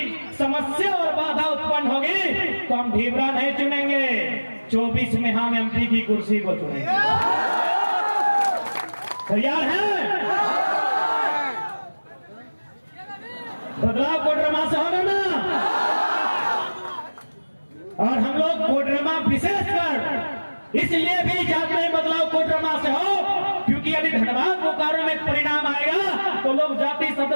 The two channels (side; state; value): both; inverted; correlation -1.00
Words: समस्या और बाधा उत्पन्न होगी तो हम ढीबरा नहीं चुनेंगे, 24 में हम एमपी की कुर्सी को चुनेंगे। तैयार है? बदलाव कोडरमा से होगा ना? और हम लोग कोडरमा विशेषकर इसलिए भी चाहते हैं बदलाव कोडरमा से हो क्योंकि यदि धनबाद बोकारो में परिणाम आएगा तो लोग जाति